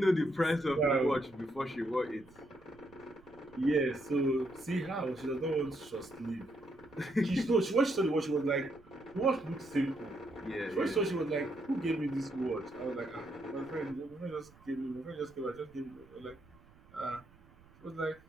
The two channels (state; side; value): noise; right; rumble, 26 dB below the sound